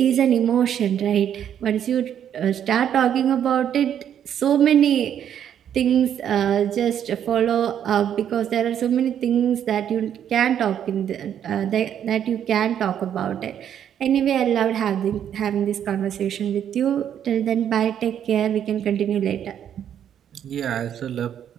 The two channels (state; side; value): quieter; left; 9.5 dB